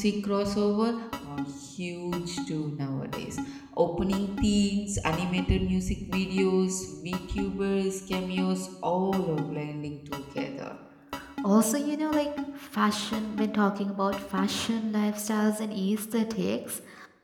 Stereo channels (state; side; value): identical; both; correlation 1.00